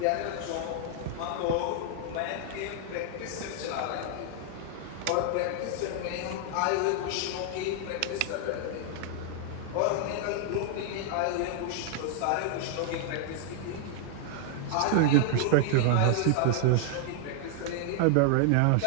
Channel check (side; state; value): both; different; correlation -0.01